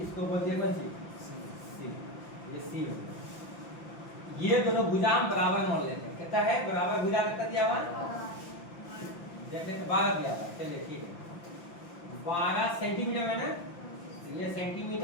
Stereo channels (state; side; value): late; right; 5.8 ms